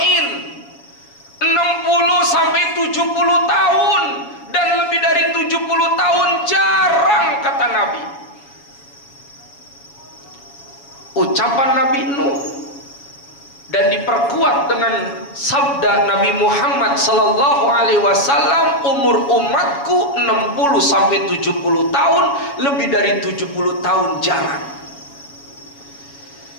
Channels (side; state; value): right; late; 7.2 ms